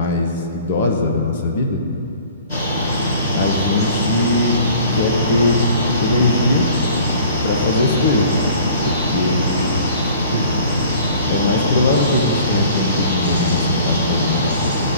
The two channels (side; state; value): both; inverted; correlation -0.49